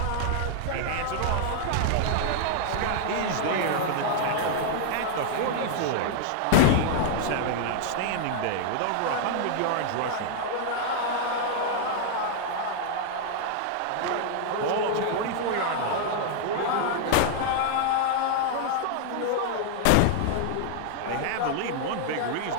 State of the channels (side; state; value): both; different; correlation 0.00